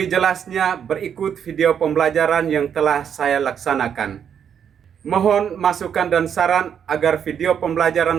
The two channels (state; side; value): quieter; left; 8.2 dB